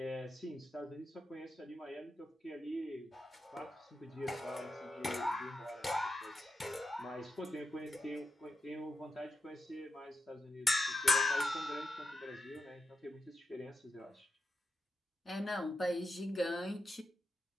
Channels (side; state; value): both; normal; correlation 0.86